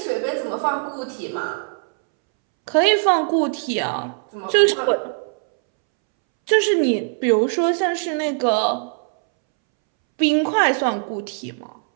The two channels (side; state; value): left; silent; 65 dB below the other